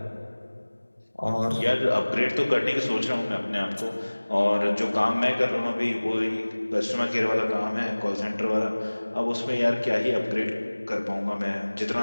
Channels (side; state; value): both; inverted; correlation -1.00